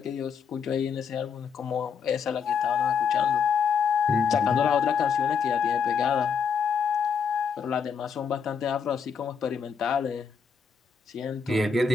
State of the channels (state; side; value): quieter; right; 6.2 dB